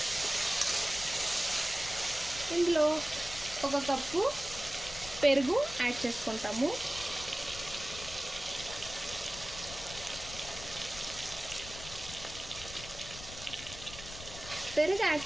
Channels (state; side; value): noise; left; rumble, 13 dB below the sound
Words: ఇందులో 1 కప్పు పెరుగు యాడ్ చేసుకుంటాము. పెరుగు యాడ్